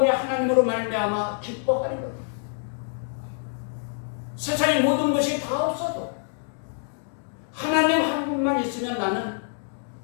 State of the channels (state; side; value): silent; right; digital silence